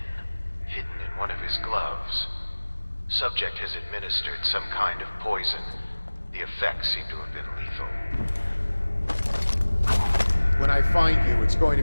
hidden in one of his gloves. Subject has administered some kind of poison. The effects seem to have been lethal. When I find you, it's going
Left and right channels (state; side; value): inverted; both; correlation -1.00